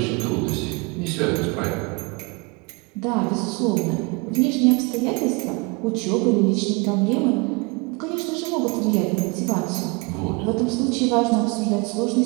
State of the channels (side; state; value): left; quieter; 28.7 dB